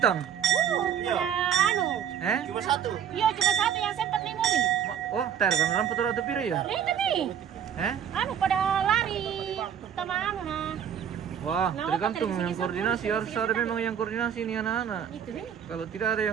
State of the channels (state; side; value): quieter; left; 8.7 dB